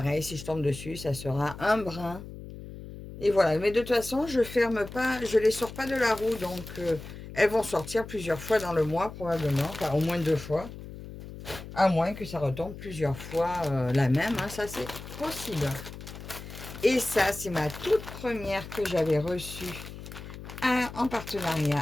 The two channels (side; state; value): left; noise; hum, 12 dB below the sound